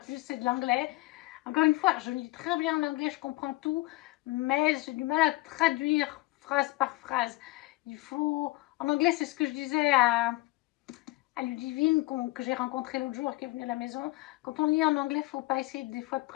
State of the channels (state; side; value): quieter; right; 21.1 dB